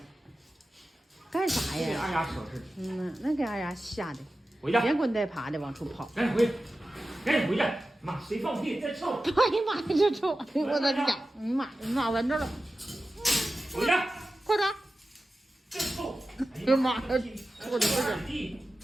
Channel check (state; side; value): normal; both; correlation 0.94